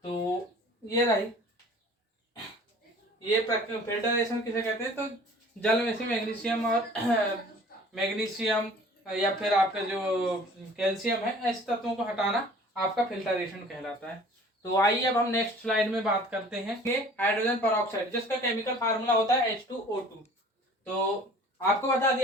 तो ये रही, ये फिल्टरेशन किसे कहते हैं? तो जल में से मैग्नीशियम और मैग्नीशियम या फिर आपका जो कैल्शियम है, ऐसे तत्वों को हटाना आपका फिल्टरेशन कहलाता है। तो आइए अब हम नेक्स्ट स्लाइड में बात करते हैं कि हाइड्रोजन परऑक्साइड, जिसका केमिकल फार्मूला होता है H2O2। तो आपको बता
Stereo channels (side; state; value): both; normal; correlation 0.48